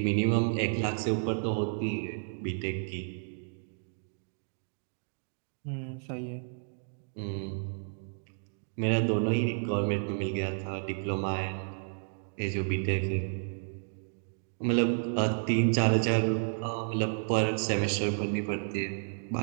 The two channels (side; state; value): left; silent; digital silence